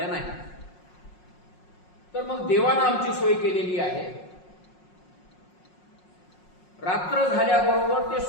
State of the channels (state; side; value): late; right; 5.5 ms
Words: नाही, तर मग देवानं आमची सोय केलेली आहे. रात्र झाल्याबरोबर ते